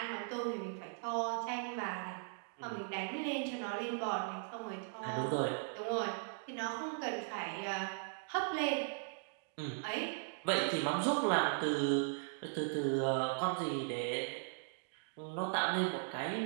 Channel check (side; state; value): left; silent; digital silence